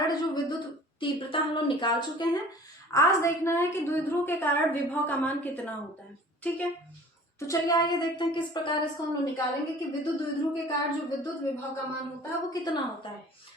जो विद्युत तीव्रता हम लोग निकाल चुके हैं, आज देखना है कि द्विध्रुव के कारण विभव का मान कितना होता है। ठीक है, तो चलिए आइए देखते हैं किस प्रकार इसको हम लोग निकालेंगे कि विद्युत द्विध्रुव के कारण जो विद्युत विभव का मान होता है वो कितना होता है।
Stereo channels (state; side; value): normal; both; correlation 0.46